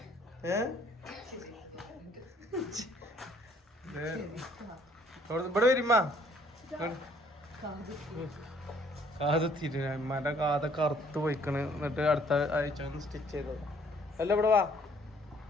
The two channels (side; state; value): both; normal; correlation 0.62